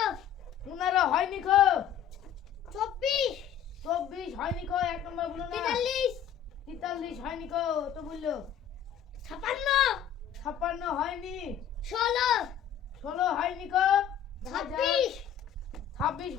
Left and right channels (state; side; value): quieter; right; 9.1 dB